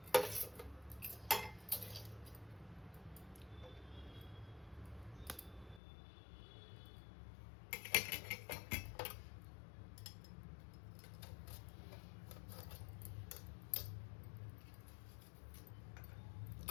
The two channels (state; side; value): drops out; right; at 5.8 s